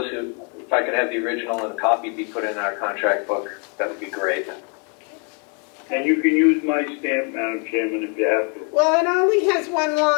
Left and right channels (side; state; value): right; quieter; 38.1 dB